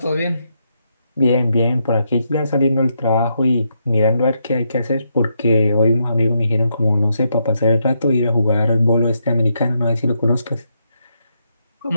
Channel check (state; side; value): inverted; both; correlation -0.80